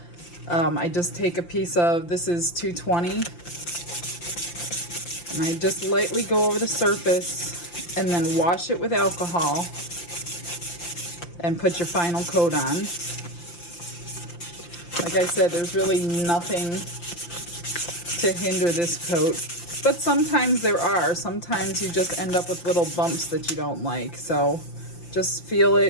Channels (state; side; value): late; right; 5.8 ms